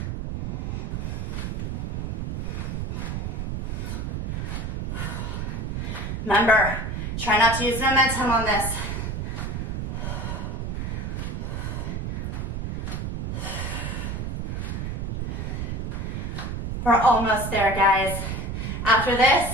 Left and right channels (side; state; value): right; noise; rumble, 3 dB below the sound